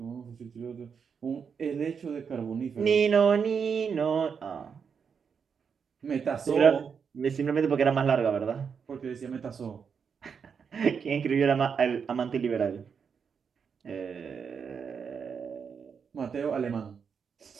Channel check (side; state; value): left; quieter; 6.4 dB